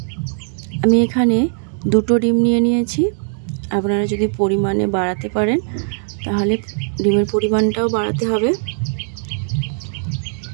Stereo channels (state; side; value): silent; left; 67 dB below the other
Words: আমি এখানে 2টো ডিম নিয়ে নিয়েছি। আপনারা যদি পরিমাণে বাড়াতে পারেন তাহলে ডিমের পরিমাণটাও বাড়াতে হবে।